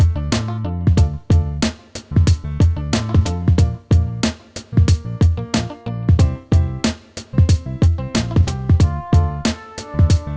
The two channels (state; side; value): identical; both; correlation 1.00